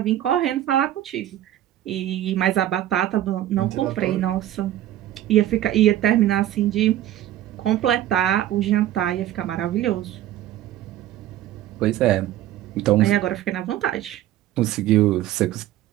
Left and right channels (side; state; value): left; quieter; 12.9 dB